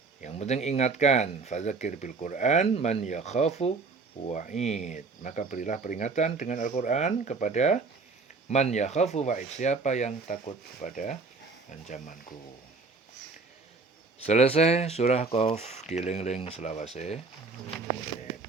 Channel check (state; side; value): quieter; left; 4.1 dB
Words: Yang penting ingatkan, fadzakir bil Quran man yakhafu wa'id, maka berilah peringatan dengan Al-Quran kepada man yakhafu wa'id, siapa yang takut kepada ancamanku. Selesai surah Qaf, dieling-eling selawase.